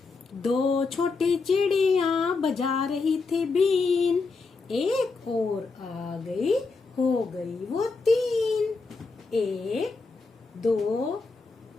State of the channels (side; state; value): right; quieter; 4.2 dB